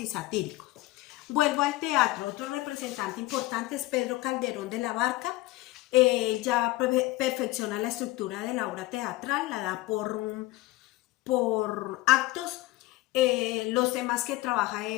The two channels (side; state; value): right; quieter; 18.6 dB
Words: satíricos. Vuelvo al teatro. Otro representante importante es Pedro Calderón de la Barca. Ya perfecciona la estructura de la obra teatral, la da por actos. Los temas que trabaja